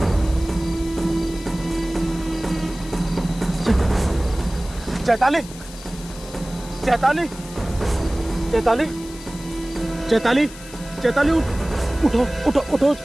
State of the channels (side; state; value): left; noise; hiss, 17 dB below the sound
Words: चैताली, चैताली, चैताली, चैताली, चैताली, उठो उठो उठो